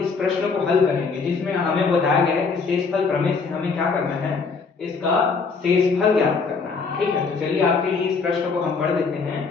प्रश्न को हल करेंगे जिसमें हमें बताया गया है कि शेषफल प्रमेय से हमें क्या करना है, इसका शेषफल ज्ञात करना है। ठीक है, तो चलिए आपके लिए इस प्रश्न को हम पढ़ देते हैं।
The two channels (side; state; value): right; quieter; 4.8 dB